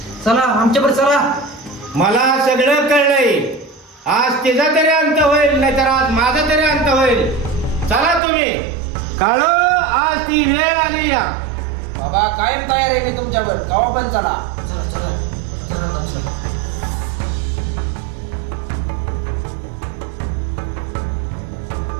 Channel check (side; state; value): left; drops out; at 8.2 s